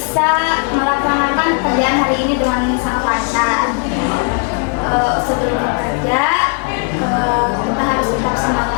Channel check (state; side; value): quieter; right; 38.3 dB